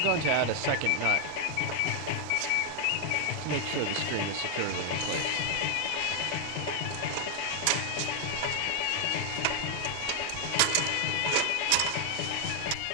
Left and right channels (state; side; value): different; both; correlation 0.00